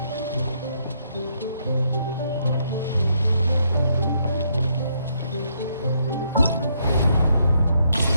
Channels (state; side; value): inverted; both; correlation -0.74